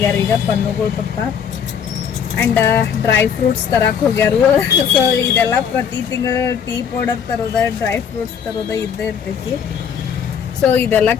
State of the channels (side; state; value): right; quieter; 7.6 dB